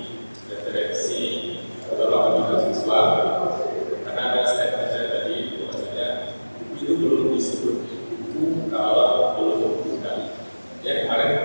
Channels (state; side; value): inverted; both; correlation -1.00